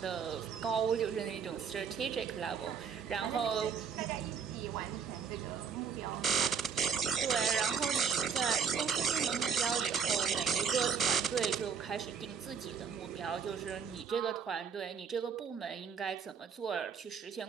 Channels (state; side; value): quieter; left; 6.6 dB